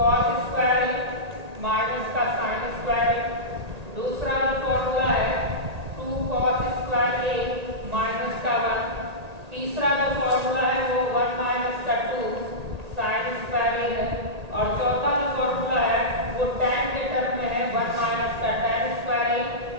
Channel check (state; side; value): late; left; 1.8 ms